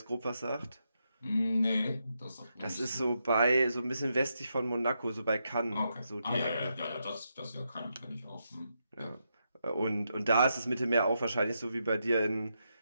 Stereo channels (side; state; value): both; inverted; correlation -0.83